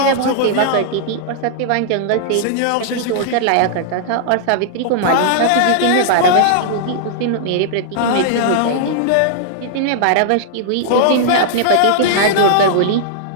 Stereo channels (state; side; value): different; both; correlation -0.01